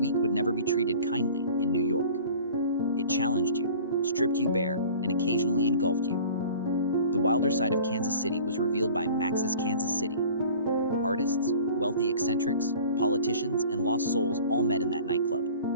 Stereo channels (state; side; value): inverted; both; correlation -0.45